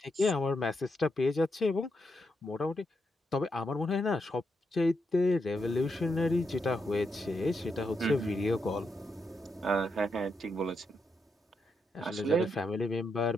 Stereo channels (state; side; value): normal; both; correlation 0.82